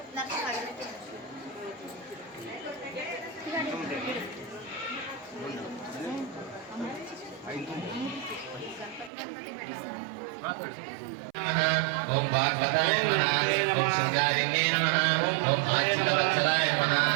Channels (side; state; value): left; drops out; at 9.1 s